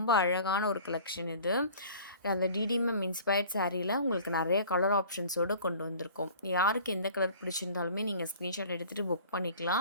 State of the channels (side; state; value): both; inverted; correlation -0.46